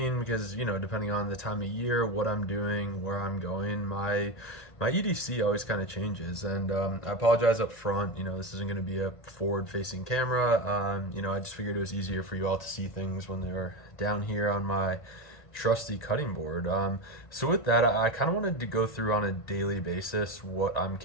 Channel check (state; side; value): late; right; 1.5 ms